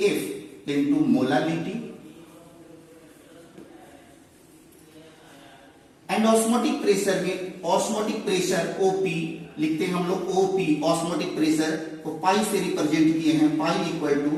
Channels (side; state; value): both; identical; correlation 1.00